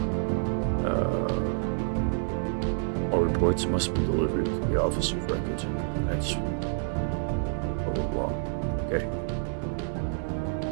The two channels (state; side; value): silent; left; digital silence